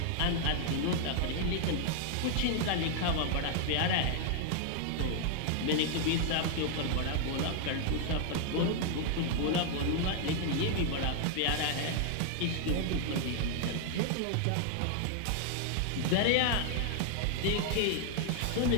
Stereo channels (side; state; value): both; different; correlation 0.00